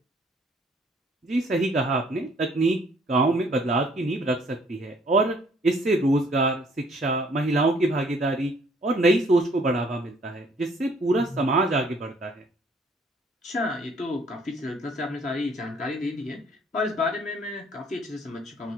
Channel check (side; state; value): both; normal; correlation 0.61